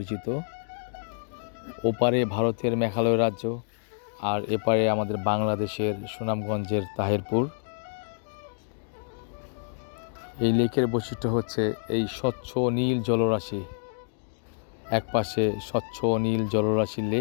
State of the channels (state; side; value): silent; right; 60 dB below the other